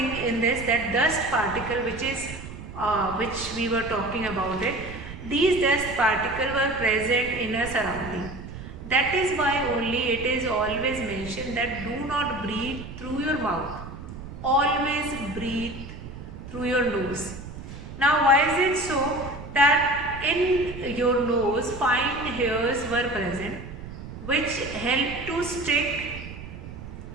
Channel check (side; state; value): right; noise; rumble, 12 dB below the sound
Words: in this, that dust particle which we were talking about it. These dust particles were present in a surrounding. That is why only it is always mentioned that do not breathe through your mouth. Always breathe through your nose. Now why is it so? That in your nose fine hairs were present which help to stick